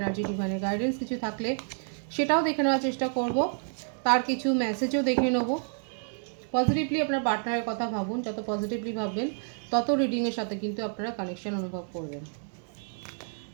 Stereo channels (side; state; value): left; silent; 57 dB below the other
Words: ডিভাইনের গাইডেন্স কিছু থাকলে সেটাও দেখে নেওয়ার চেষ্টা করব। তার কিছু মেসেজও দেখে নেব। পজিটিভলি আপনার পার্টনারের কথা ভাবুন, যত পজিটিভলি ভাববেন তত রিডিংয়ের সাথে কিন্তু আপনারা কানেকশন অনুভব করবেন।